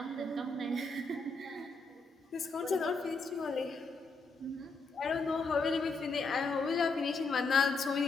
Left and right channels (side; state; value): right; quieter; 3.7 dB